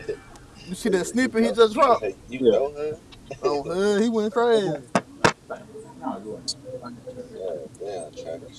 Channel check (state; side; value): identical; both; correlation 1.00